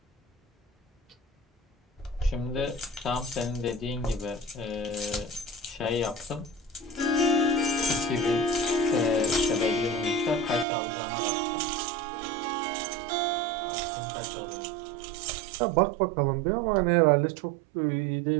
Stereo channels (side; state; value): left; drops out; at 10.7 s